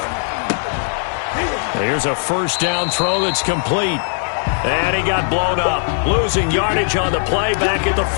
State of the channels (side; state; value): right; silent; 67 dB below the other